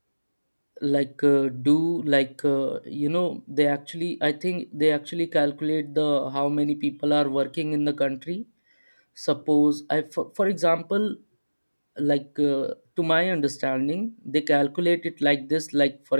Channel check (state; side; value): inverted; both; correlation -1.00